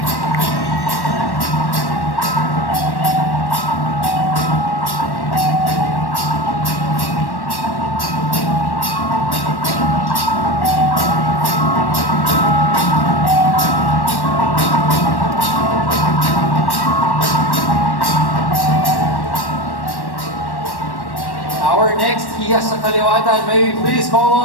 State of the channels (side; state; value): right; late; 1.1 ms